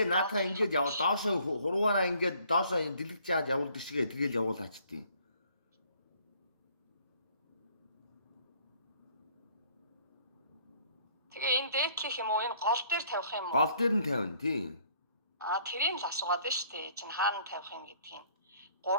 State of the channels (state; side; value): inverted; both; correlation -0.60